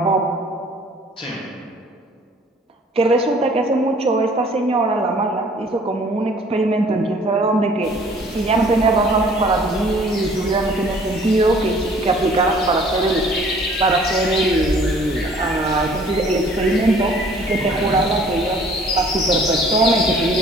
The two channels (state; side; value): normal; both; correlation 0.55